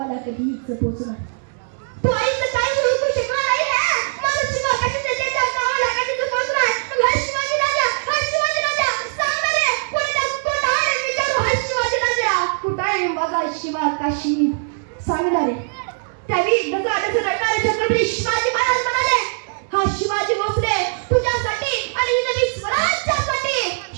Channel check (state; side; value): silent; left; digital silence